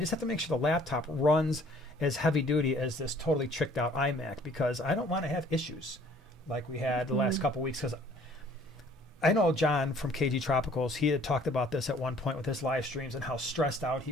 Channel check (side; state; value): both; normal; correlation 0.56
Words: have to make sure the laptop runs as heavy duty as this totally tricked out iMac, because I don't want to have issues like we had the last couple weeks. Because I know John from KG Tropicals, he had talked about this at one point with his live streams and how stressed out he